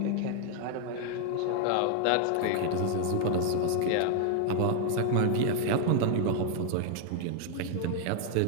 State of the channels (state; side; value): different; both; correlation 0.01